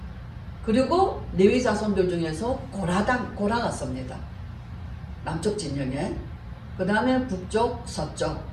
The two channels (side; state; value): both; identical; correlation 1.00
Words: 그리고 레위 자손들 중에서 고라가 섭니다. 남쪽 진영에. 그 다음에 북쪽, 서쪽